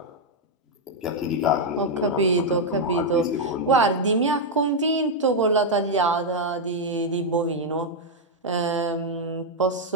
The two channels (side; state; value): both; normal; correlation -0.01